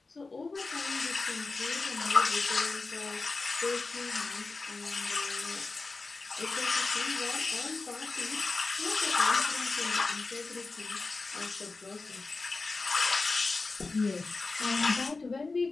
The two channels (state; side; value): quieter; right; 3.8 dB